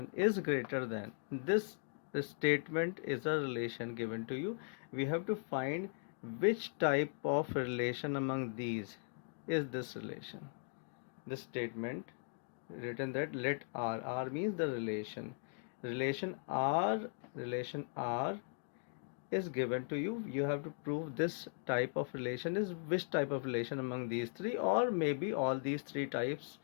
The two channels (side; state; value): right; silent; digital silence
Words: is greater than this. The statement is a relation given to you. We have to find which type of relation among these is this relation. This statement written that let R means the relation R is given to you. You have to prove this type of relation is which type of relation among these 3, or maybe all these 3 types